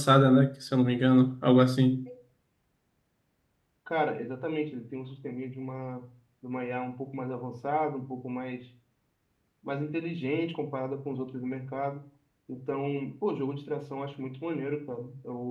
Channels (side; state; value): both; identical; correlation 1.00